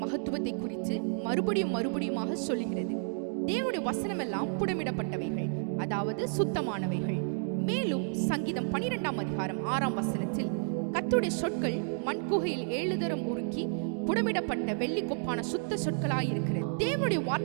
மகத்துவத்தை குறித்து மறுபடியுமாக சொல்லுகிறது. தேவனுடைய வசனம் எல்லாம் புடமிடப்பட்டவைகள், அதாவது சுத்தமானவைகள். மேலும் சங்கீதம் 12ஆம் அதிகாரம் 6ஆம் வசனத்தில் கர்த்தருடைய சொற்கள் மண்குகையில் 7 தரம் உருக்கி புடமிடப்பட்ட வெள்ளி கொப்பான சுத்த சொற்களாயிருக்கிறது. தேவனுடைய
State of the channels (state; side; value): silent; left; 57 dB below the other